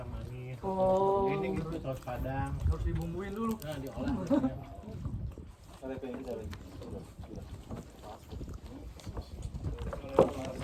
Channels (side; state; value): both; identical; correlation 1.00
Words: manis. Oh. Ini gitu saus padang. Harus dibumbuin dulu. Nah, diolah.